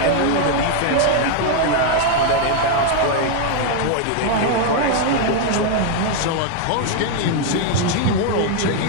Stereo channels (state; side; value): different; both; correlation 0.00